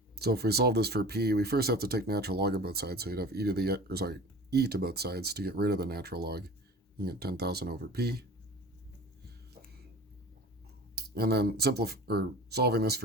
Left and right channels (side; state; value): both; normal; correlation 0.40